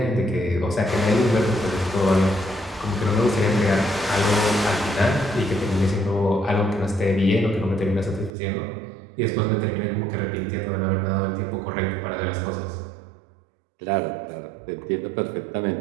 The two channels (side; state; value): left; drops out; at 8.3 s